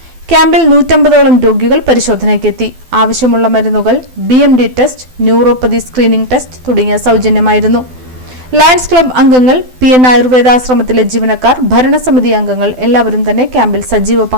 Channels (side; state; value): left; late; 12 ms